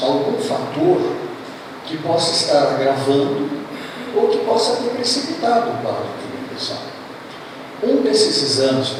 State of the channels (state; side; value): identical; both; correlation 1.00